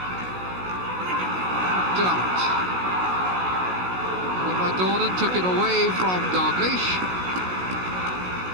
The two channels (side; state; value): left; late; 16 ms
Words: Dermot. And by Dornan, took it away from Dalglish.